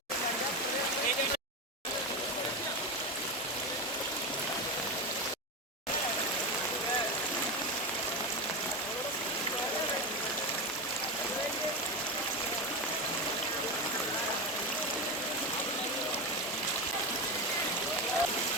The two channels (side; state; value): both; normal; correlation 0.17